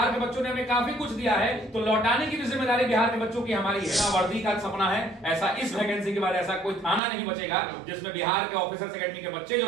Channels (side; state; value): left; drops out; at 7.0 s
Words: के बच्चों ने हमें काफी कुछ दिया है, तो लौटाने की भी जिम्मेदारी बिहार के बच्चों की हमारी है। वर्दी का सपना है, ऐसा इस वैकेंसी के बाद ऐसा कोई थाना नहीं बचेगा जिसमें बिहार के ऑफिसर्स एकेडमी के बच्चे जो